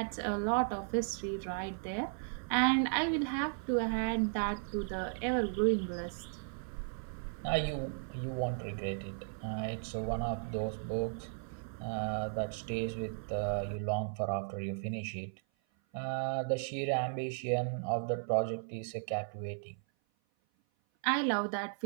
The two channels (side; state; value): left; silent; 54 dB below the other